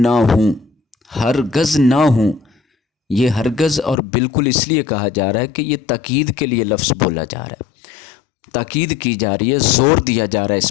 ہوں، ہرگز نہ ہوں۔ یہ ہرگز اور بالکل اس لیے کہا جا رہا ہے کہ یہ تاکید کے لیے لفظ بولا جا رہا ہے، تاکید کی جا رہی ہے، زور دیا جا رہا ہے اس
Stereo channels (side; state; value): right; drops out; at 4.0 s